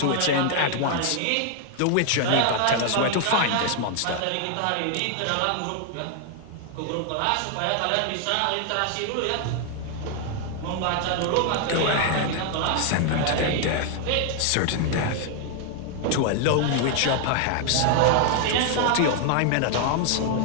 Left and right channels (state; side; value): different; both; correlation 0.00